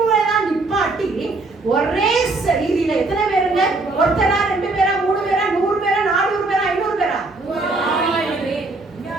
நிப்பாட்டி ஒரே சரீரில எத்தனை பேருங்க? ஒருத்தரா, 2 பேரா, 3 பேரா, 100 பேரா, 400 பேரா, 500 பேரா?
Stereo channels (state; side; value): quieter; left; 3.2 dB